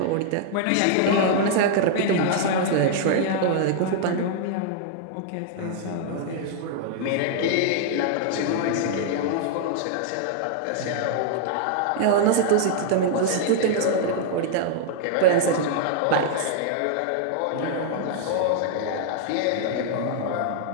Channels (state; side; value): different; both; correlation -0.01